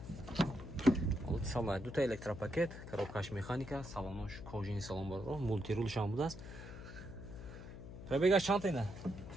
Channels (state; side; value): noise; left; hum, 11 dB below the sound